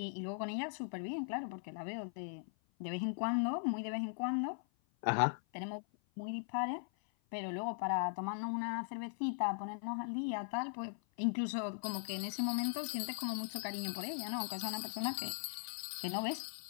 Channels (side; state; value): right; silent; 51 dB below the other